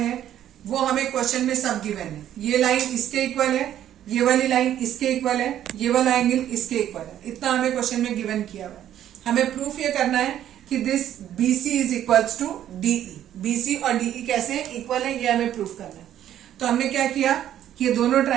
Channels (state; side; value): quieter; left; 11.3 dB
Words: वो हमें क्वेश्चन में सब गिवन है। ये लाइन इसके इक्वल है, ये वाली लाइन इसके इक्वल है, ये वाला एंगल इसके इक्वल है। इतना हमें क्वेश्चन में गिवन किया हुआ है। हमें प्रूफ ये करना है कि this BC is equals to DE। BC और DE कैसे इक्वल है, ये हमें प्रूफ करना है। तो हमने क्या किया कि ये दोनों